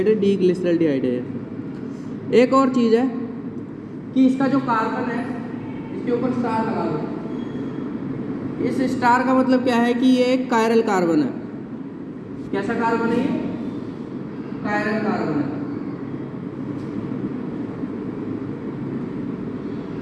है? डी ग्लिसरैल्डिहाइड है। एक और चीज़ है कि इसका जो कार्बन है इसके ऊपर स्टार लगा दो। इस स्टार का मतलब क्या है कि ये एक कायरल कार्बन है। कैसा कार्बन है ये? कायरल कार्बन है।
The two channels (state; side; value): identical; both; correlation 1.00